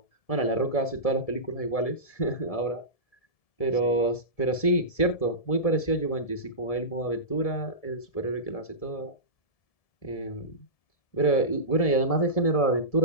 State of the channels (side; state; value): right; late; 1.7 ms